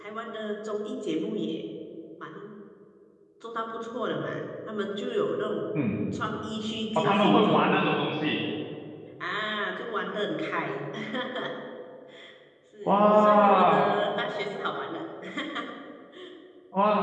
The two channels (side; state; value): both; identical; correlation 1.00